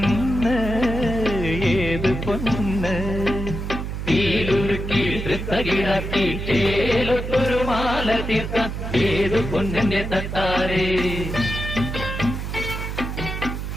ഏത് പൊന്ന് തീലുരുക്കി വൃത്തകിടാക്കി തേലൊത്തൊരു മാല തീർക്കാൻ ഏത് പൊന്നിന്റെ തട്ടാരേ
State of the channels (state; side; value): noise; right; hum, 5 dB below the sound